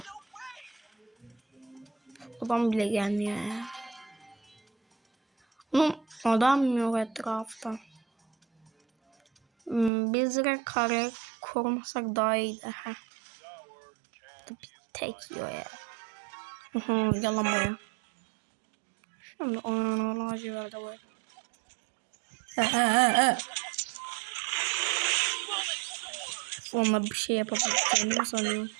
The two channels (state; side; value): drops out; left; at 9.9 s